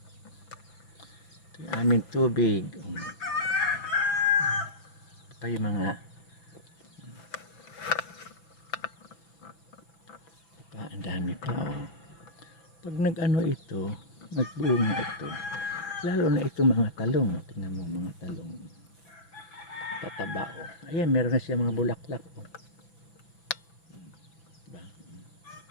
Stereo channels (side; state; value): right; late; 6.0 ms